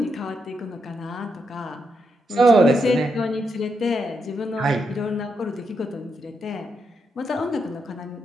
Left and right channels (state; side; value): normal; both; correlation 0.82